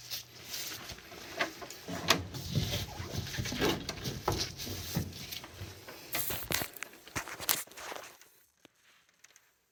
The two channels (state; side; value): identical; both; correlation 1.00